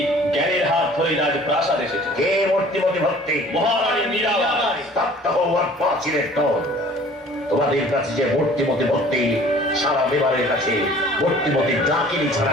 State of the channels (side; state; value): both; normal; correlation 0.49